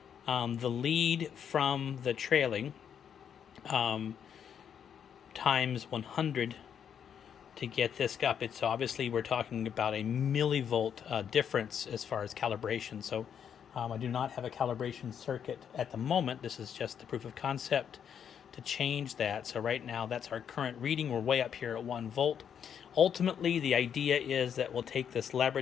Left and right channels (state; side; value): quieter; right; 8.2 dB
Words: The lead from the trailing times 100 to get this up. It's obviously, we're talking about a millivolt difference as far as calibration. So I do not have a calibration circuit at the moment. This is just the proof of concept to change that. So right now that's our current reading. We're way up here at 1 volt. Ultimately, the idea is that we'll take this